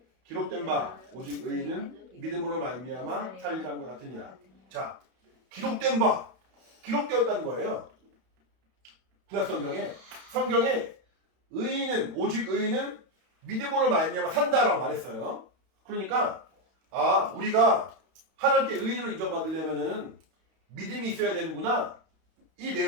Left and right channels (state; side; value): late; left; 31 ms